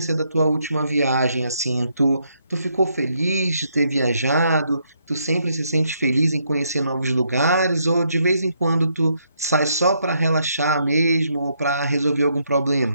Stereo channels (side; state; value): both; inverted; correlation -0.75